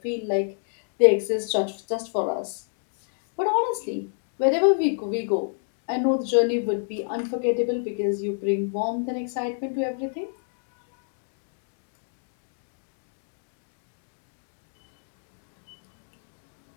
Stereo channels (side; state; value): right; silent; digital silence